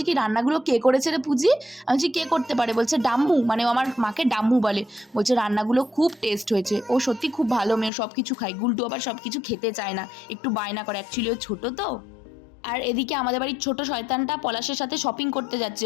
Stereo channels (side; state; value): right; drops out; at 7.9 s